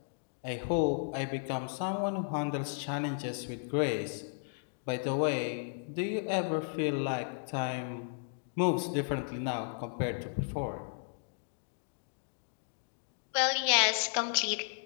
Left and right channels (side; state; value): right; silent; digital silence